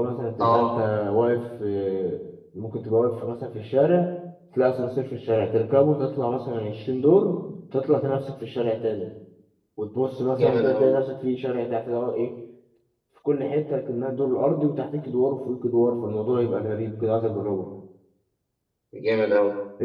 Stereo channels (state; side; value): identical; both; correlation 1.00